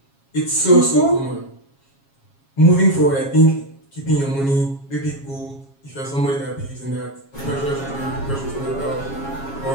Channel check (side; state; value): right; late; 7.3 ms